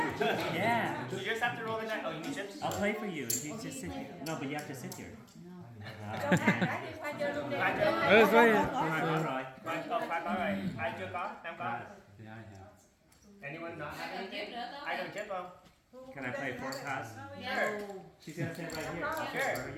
So you just have to roll the dice. Oh, you need chips? I'll play for you if you just sit here. No, but you have to sit here. Rồi. Khoai có rồi. Ai chưa có? Em có. Anyone not have anything? Ai cần chip không? Can I play 4 cards? Sure. She's gonna sit right here. Sure.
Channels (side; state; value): both; identical; correlation 1.00